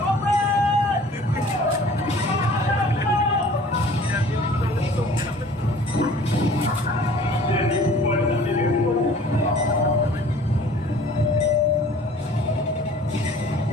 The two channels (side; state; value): both; normal; correlation 0.49